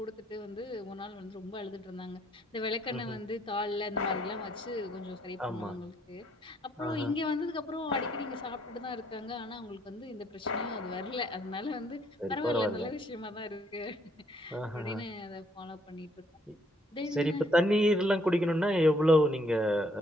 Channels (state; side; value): normal; both; correlation 0.68